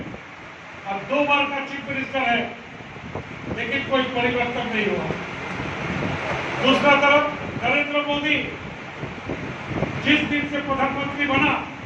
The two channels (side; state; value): both; identical; correlation 1.00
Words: और 2 बार का चीफ मिनिस्टर है, लेकिन कोई परिवर्तन नहीं हुआ। दूसरा तरफ नरेंद्र मोदी जिस दिन से प्रधानमंत्री बना,